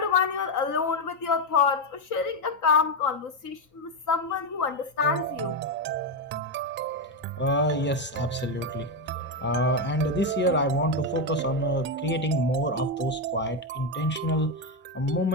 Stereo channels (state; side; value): normal; both; correlation 0.07